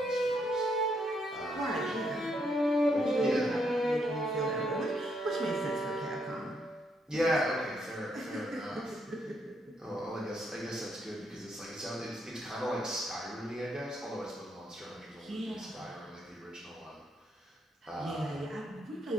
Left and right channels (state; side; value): normal; both; correlation 0.75